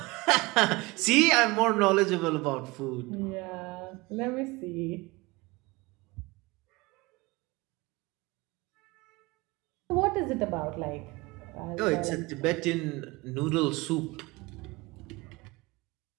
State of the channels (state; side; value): quieter; left; 22.8 dB